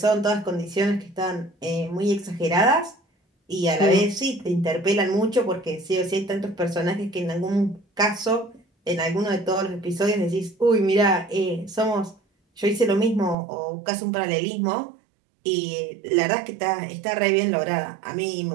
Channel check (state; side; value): drops out; left; at 13.4 s